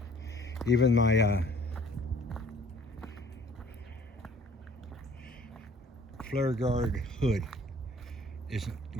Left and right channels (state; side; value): normal; both; correlation 0.54